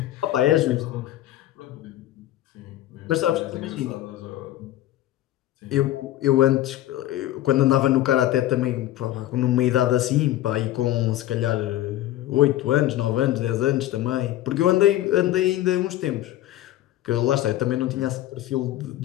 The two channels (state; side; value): quieter; right; 14.2 dB